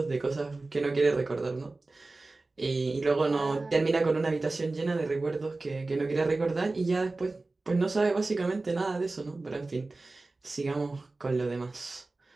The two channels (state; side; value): quieter; left; 3.3 dB